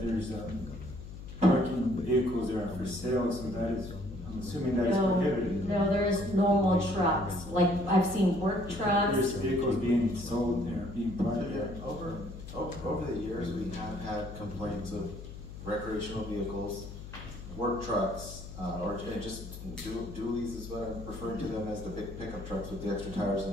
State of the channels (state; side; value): noise; left; hum, 12 dB below the sound